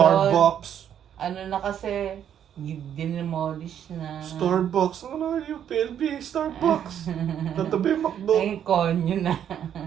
na kasi, dinemolish na. Starbucks, yung PLB, Starbucks. Tatabi yung McDo. Ay, konyo na.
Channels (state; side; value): quieter; left; 9.5 dB